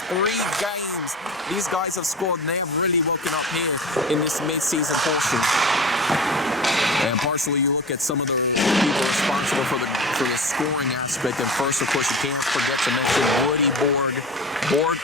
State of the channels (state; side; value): normal; both; correlation 0.34